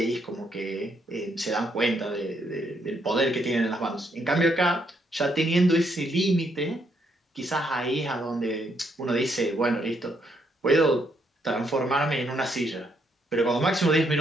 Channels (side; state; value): both; normal; correlation 0.74